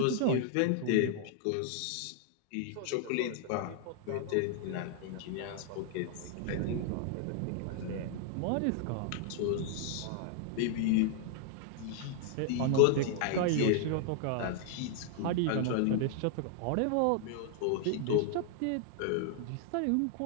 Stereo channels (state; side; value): different; both; correlation 0.00